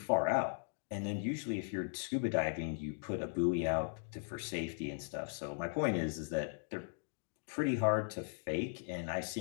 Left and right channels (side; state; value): right; silent; digital silence